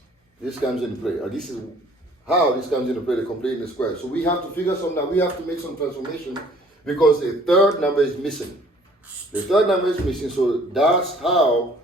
this comes into play. Or this is how this comes into play, the complete the square. So we have to figure something out. We have to make some transformation because the third number is missing. The third number is missing, so that's how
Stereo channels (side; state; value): both; normal; correlation 0.55